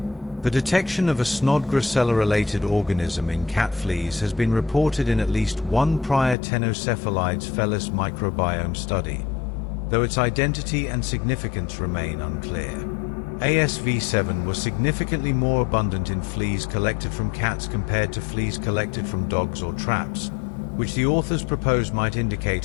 The detection of a Snodgrassella-related organism in cat fleas has been reported in at least one prior Ctenocephalides felis microbiome study, though its identity and significance remain unclear. ASV7 was significantly more abundant in fleas collected from cats compared to fleas collected from dogs or traps, which the authors propose might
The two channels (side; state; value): right; drops out; at 6.4 s